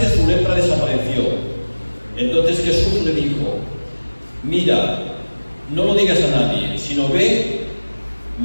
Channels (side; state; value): both; inverted; correlation -1.00